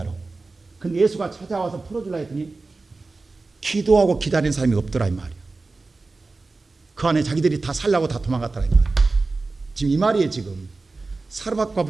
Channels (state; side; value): quieter; left; 3.6 dB